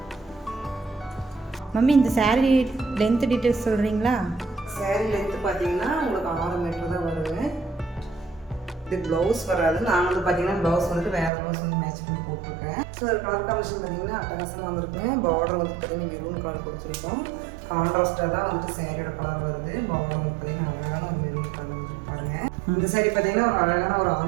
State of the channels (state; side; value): drops out; left; at 11.3 s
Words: மம்மி இந்த saree லென்த் டீட்டெயில்ஸ் சொல்கிறீங்களா? saree லென்த்து பார்த்தீங்கன்னா உங்களுக்கு 6 மீட்டர் தான் வருங்க. இது ப்ளவுஸ் வராது. நான் வந்து பார்த்தீங்கன்னா ப்ளவுஸ் வந்துட்டு வேறு ப்ளவுஸ் வந்து மேட்ச் பண்ணி போட்டிருக்கேன். ஸோ அது கலர் காம்பினேஷன் பார்த்தீங்கன்னா அட்டகாசமாக வந்துருக்குங்க. பார்டர் வந்து பார்த்தீங்கன்னா மெரூன் கலர் கொடுத்துருக்கோம். கான்ட்ராஸ்டாக தான் வந்துட்டு சேரீயோட கலர் வருது. பார்டர் வந்து பார்த்தீங்கன்னா அழகான ஒரு மெரூன் கலர் வந்துருக்கு பாருங்கள். இந்த saree பார்த்தீங்கன்னா ஒரு அழகான ஒரு